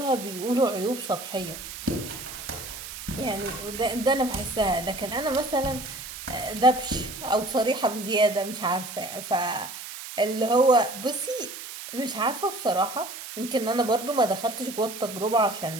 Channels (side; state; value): right; noise; hiss, 10 dB below the sound